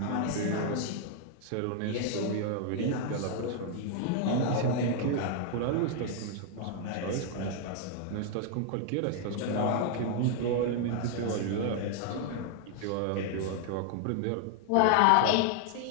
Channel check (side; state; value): both; different; correlation 0.00